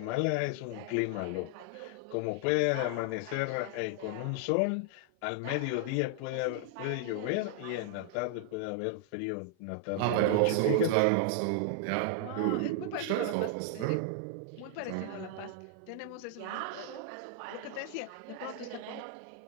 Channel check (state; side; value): different; both; correlation -0.01